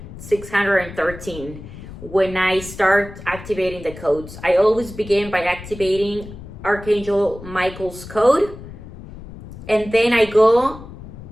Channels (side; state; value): left; noise; rumble, 14 dB below the sound